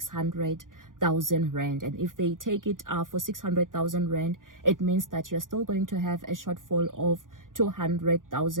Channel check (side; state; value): left; late; 0.89 ms